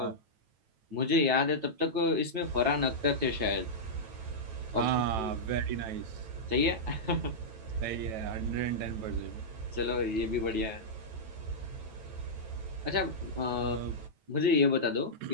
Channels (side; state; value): left; late; 9.1 ms